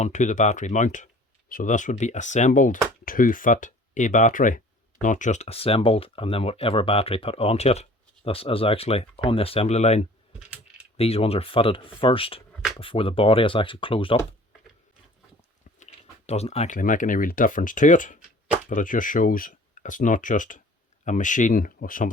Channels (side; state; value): both; normal; correlation 0.48